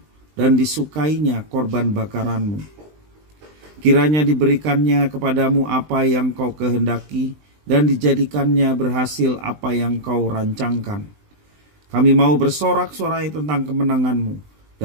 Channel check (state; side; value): late; left; 20 ms